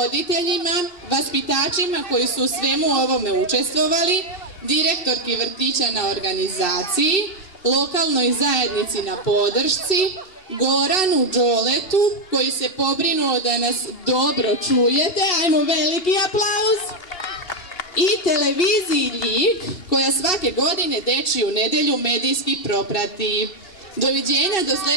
vaspitačima koji su u svemu ovome učestvovali, direktorki vrtića na organizaciji, lokalnoj zajednici na podršci, Goranu Đoletu koji se pobrinuo da nas dobro čujete. Ajmo, veliki aplauz. i televiziji Ljig, koja svake godine Dečiju nedjelju medijski proprati. Doviđenja do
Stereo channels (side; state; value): right; late; 2.6 ms